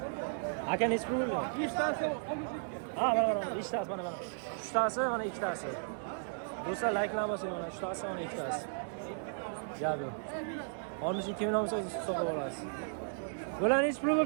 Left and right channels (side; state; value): left; silent; digital silence